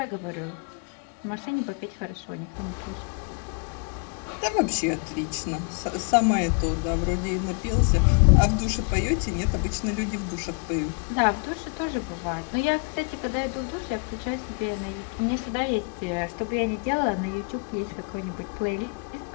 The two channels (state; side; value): quieter; right; 36.2 dB